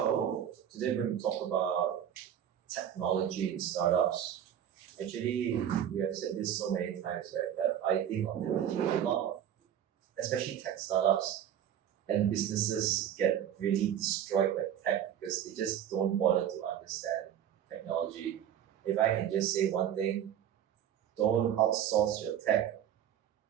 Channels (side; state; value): left; quieter; 10.0 dB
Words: today we're going to talk about technology in startups. Actually, we have said this so many times, right? That I think ultimately a lot of, especially tech startups and businesses get really destroyed by tech because they just don't bother to understand technology. If I can just say one thing, don't outsource your tech.